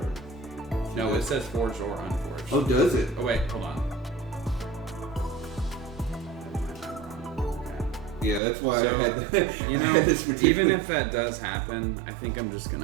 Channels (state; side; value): drops out; left; at 8.4 s